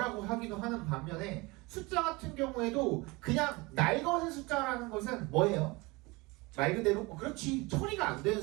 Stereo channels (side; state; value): left; quieter; 24.3 dB